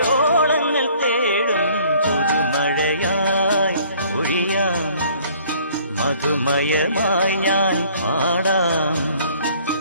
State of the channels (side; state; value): both; inverted; correlation -0.57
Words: ഓളങ്ങൾ തേടും പുതുമഴയായി പൊഴിയാം, മധുമയമായി ഞാൻ പാടാം.